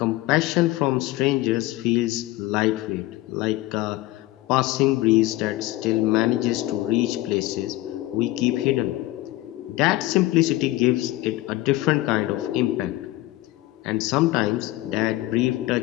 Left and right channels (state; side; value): quieter; right; 17.5 dB